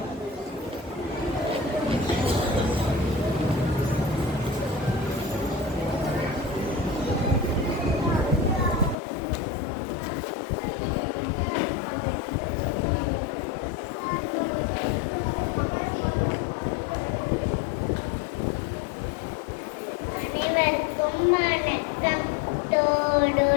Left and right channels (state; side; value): drops out; right; at 9.0 s